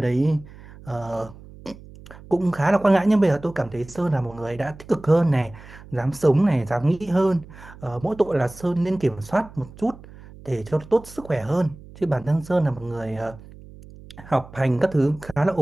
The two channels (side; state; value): right; noise; hum, 19 dB below the sound